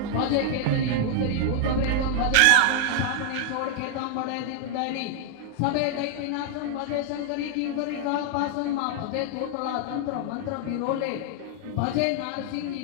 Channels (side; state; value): both; different; correlation 0.00